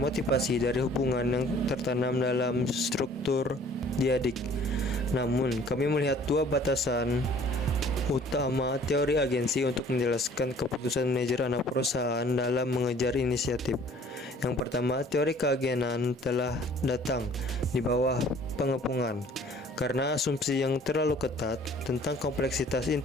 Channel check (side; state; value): both; normal; correlation 0.53